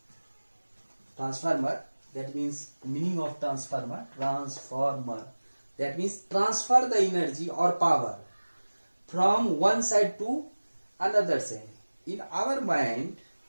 Transformer, that means meaning of transformer, that means transfer the energy or power from one side to another side. In our mind,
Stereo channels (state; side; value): inverted; both; correlation -1.00